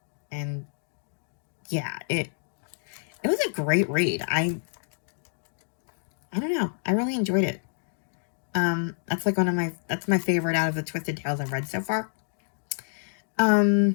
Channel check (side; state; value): right; silent; digital silence